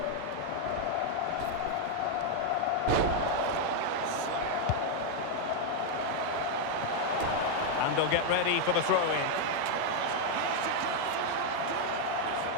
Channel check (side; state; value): both; different; correlation 0.00